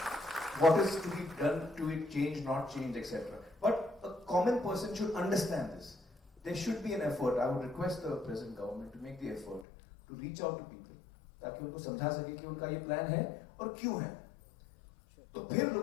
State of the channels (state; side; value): drops out; right; at 9.7 s